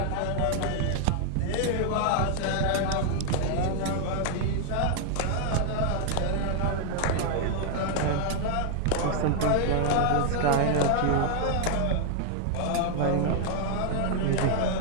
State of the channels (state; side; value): different; both; correlation 0.00